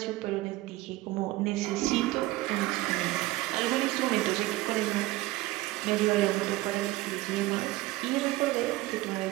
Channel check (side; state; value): left; quieter; 18.6 dB